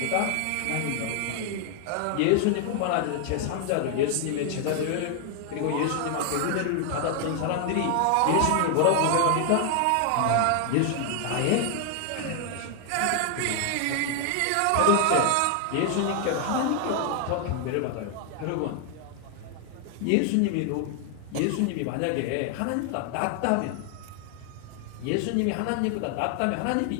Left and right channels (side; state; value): both; different; correlation 0.00